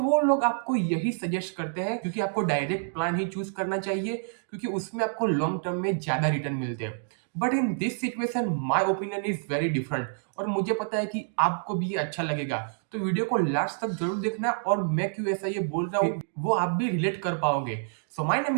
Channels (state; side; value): silent; left; digital silence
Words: वो लोग आपको यही सजेस्ट करते हैं क्योंकि आपको डायरेक्ट प्लान ही चूज करना चाहिए क्योंकि उसमें आपको लॉन्ग टर्म में ज्यादा रिटर्न मिलते हैं। But in this situation my opinion is very different और मुझे पता है कि आपको भी ये अच्छा लगेगा। तो वीडियो को लास्ट तक जरूर देखना और मैं क्यों ऐसा ये बोल रहा हूँ वो आप भी रिलेट कर पाओगे। So my name